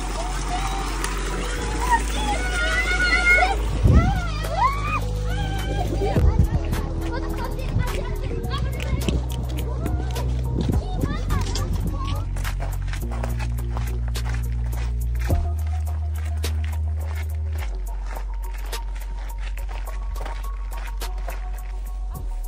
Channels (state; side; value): identical; both; correlation 1.00